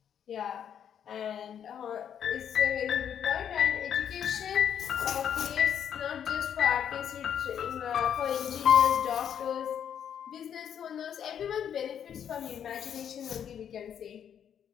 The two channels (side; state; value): right; quieter; 8.8 dB